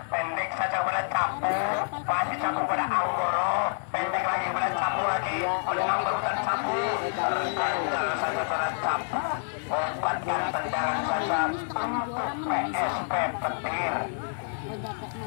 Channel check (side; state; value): right; silent; 56 dB below the other